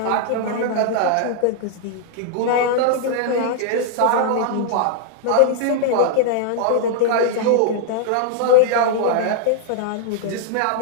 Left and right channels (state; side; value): different; both; correlation -0.01